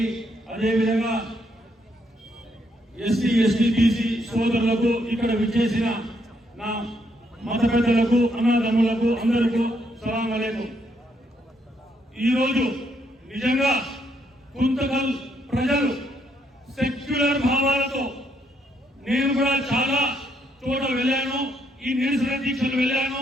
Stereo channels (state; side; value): normal; both; correlation 0.74